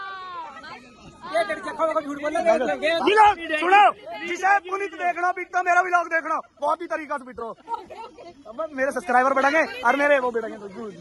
सुनो जिसे पुनीत देखना पिटता, मेरा भी लोग देखना बहुत ही तरीका से पिटो, अब मेरे सब्सक्राइबर बढ़ेंगे और मेरे वो बढ़ेंगे।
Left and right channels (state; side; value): identical; both; correlation 1.00